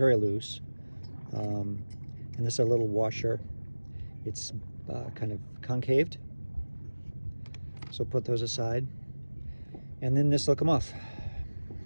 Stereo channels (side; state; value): both; inverted; correlation -1.00